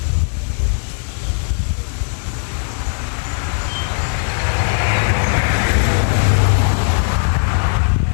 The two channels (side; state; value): right; silent; digital silence